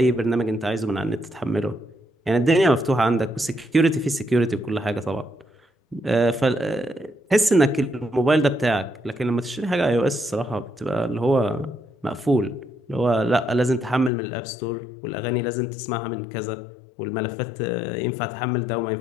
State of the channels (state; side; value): drops out; right; at 14.1 s